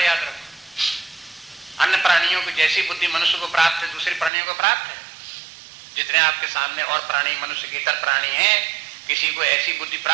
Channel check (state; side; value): drops out; left; at 4.3 s